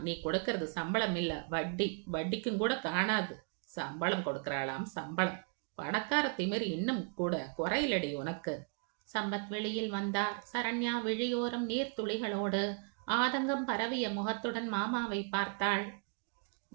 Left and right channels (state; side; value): quieter; left; 39.7 dB